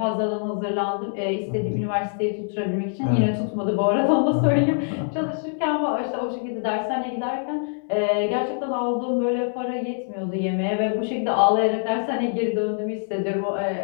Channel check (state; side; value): silent; right; digital silence